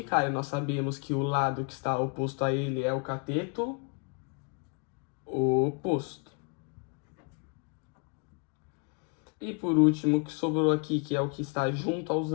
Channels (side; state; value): right; quieter; 37.1 dB